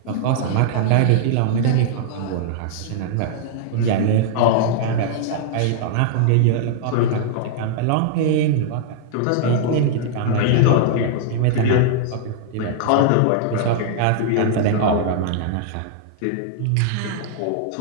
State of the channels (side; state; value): both; different; correlation -0.01